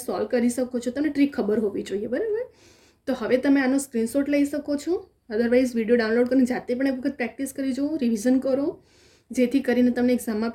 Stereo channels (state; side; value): identical; both; correlation 1.00